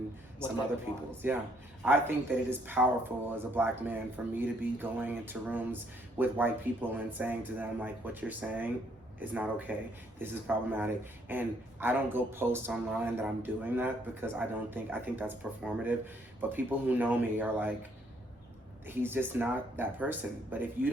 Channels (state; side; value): normal; both; correlation 0.68